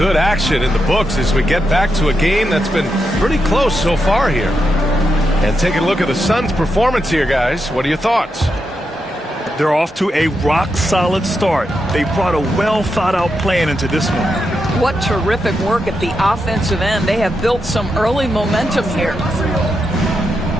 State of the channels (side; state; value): both; normal; correlation 0.85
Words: action in the books as we get back to a game that's been pretty close so far here. And taking a look at the Suns' performance here, guys. What are your thoughts? They're off to a rock-solid start. They brought a well-thought-out plan into this one. What terrific work at the offensive end. They have built some early momentum here.